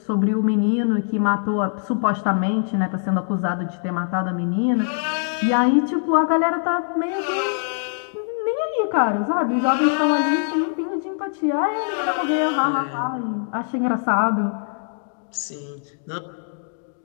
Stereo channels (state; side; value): silent; right; digital silence